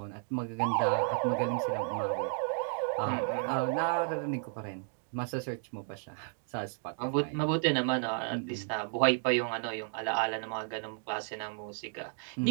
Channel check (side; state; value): left; silent; 56 dB below the other